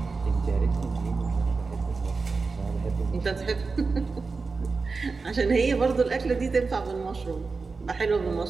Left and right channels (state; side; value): quieter; left; 4.3 dB